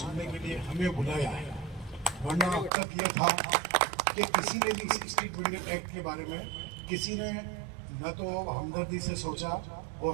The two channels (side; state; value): left; drops out; at 2.7 s